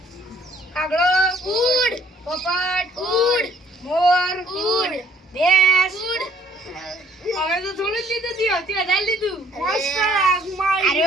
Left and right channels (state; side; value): normal; both; correlation 0.61